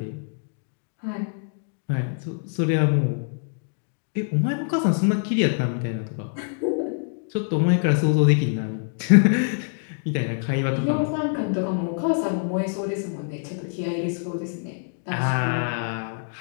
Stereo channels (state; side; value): silent; right; digital silence